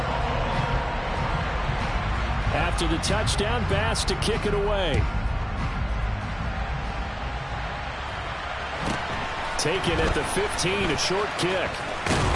After the touchdown, Bass to kick it away. Taken at the 15, a short kick.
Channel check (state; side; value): identical; both; correlation 1.00